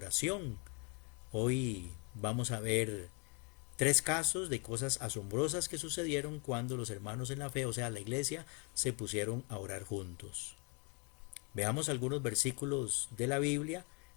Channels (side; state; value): right; quieter; 34.2 dB